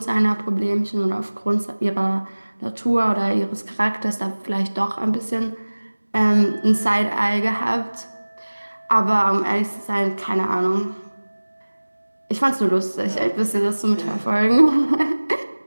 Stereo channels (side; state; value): both; inverted; correlation -1.00